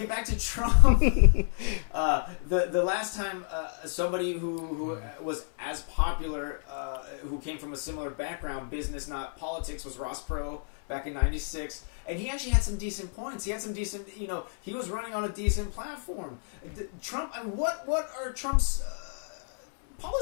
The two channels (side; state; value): right; silent; digital silence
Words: back to Trump, the last time somebody who was as popular, who came from a similar background, business not politics, was Ross Perot back in '96, and he actually had some decent points. He had some decent, he was running on a decent platform. Trump, I mean, what are Trump's